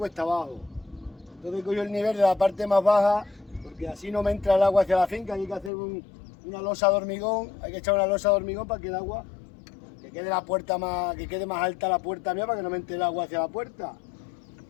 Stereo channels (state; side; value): drops out; right; at 5.7 s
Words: abajo. Entonces cojo el nivel de la parte más baja porque así no me entra el agua hacia la finca. Hay que hacer una losa de hormigón, hay que echar una losa de hormigón para que el agua, que quede la puerta más, que quede más alta la puerta mía para que no me entre el agua hacia la puerta.